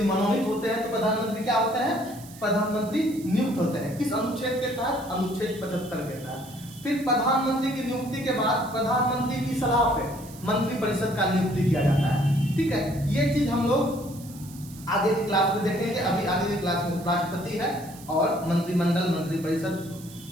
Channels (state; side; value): noise; right; hiss, 19 dB below the sound